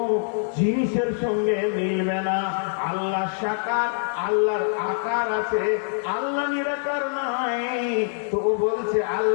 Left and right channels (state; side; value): silent; right; digital silence